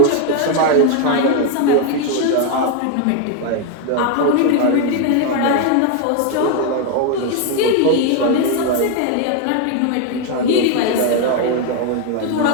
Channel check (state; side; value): different; both; correlation 0.01